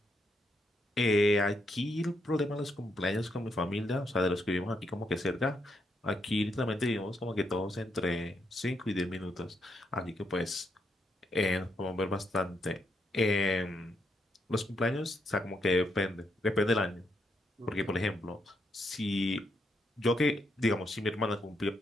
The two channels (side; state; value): both; normal; correlation 0.79